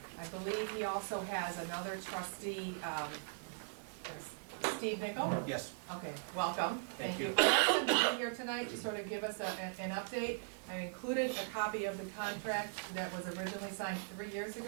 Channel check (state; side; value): silent; left; digital silence